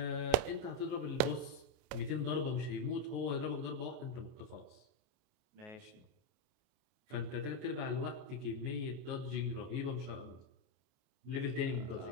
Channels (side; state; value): left; late; 28 ms